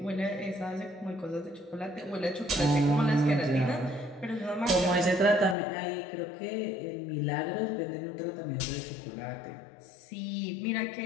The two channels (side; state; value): right; drops out; at 5.6 s